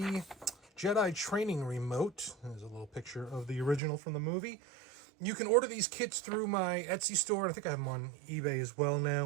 Jedi training remote. There's a little picture of the original from the movie. You can order these kits through my Etsy store. I think I have them on eBay as well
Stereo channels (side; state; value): left; drops out; at 3.8 s